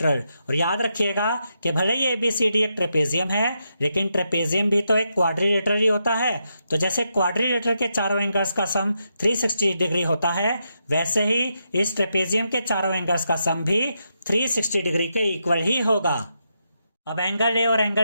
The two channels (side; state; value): both; inverted; correlation -0.83